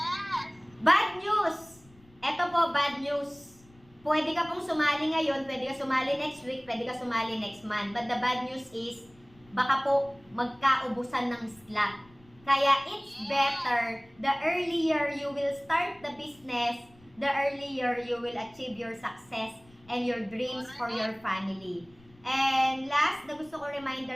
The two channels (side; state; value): left; noise; rumble, 27 dB below the sound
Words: Bad news! Ito po, bad news. Pwede ka pong sumali ngayon, pwede ka sumali next week, pwede ka sumali next month. But the bad news is, baka po magkaubusan ng slot. Kaya it's better, the earlier you will start the business, the earlier you will achieve your success and your dreams for your family. And last, na gusto ko